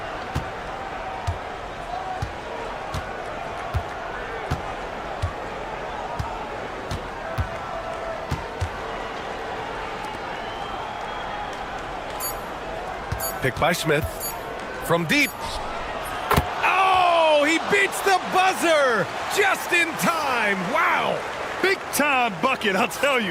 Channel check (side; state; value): both; identical; correlation 1.00